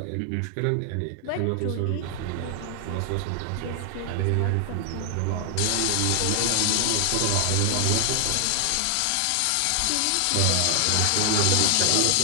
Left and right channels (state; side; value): different; both; correlation 0.00